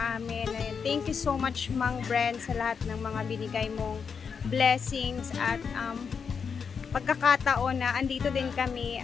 amin. Thank you so much, Mang Brand, sa lahat ng mga binigay mong blessings at pagkakataon na andito din kami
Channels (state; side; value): quieter; right; 6.2 dB